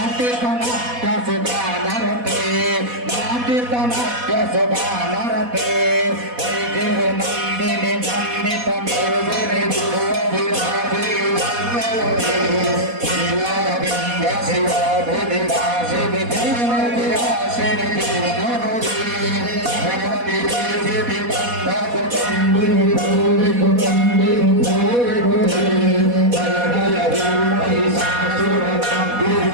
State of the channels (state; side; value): late; left; 4.1 ms